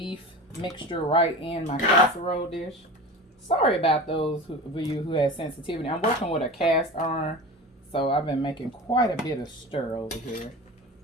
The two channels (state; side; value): normal; both; correlation 0.32